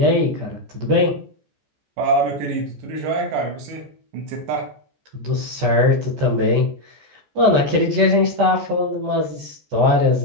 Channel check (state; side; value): late; left; 14 ms